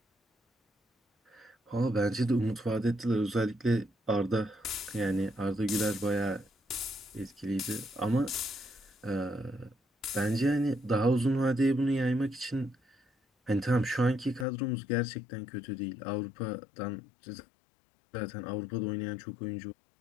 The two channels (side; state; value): right; drops out; at 14.5 s